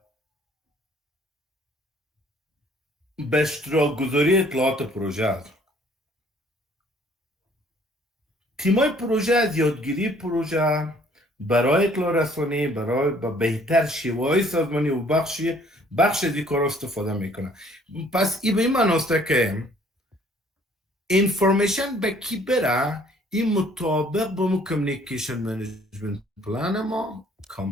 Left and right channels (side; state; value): both; normal; correlation 0.59